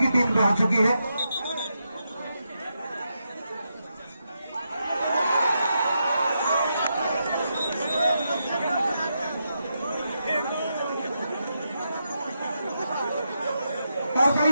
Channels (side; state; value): both; inverted; correlation -0.84